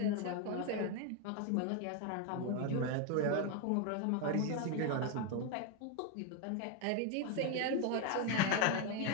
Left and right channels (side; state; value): both; different; correlation 0.01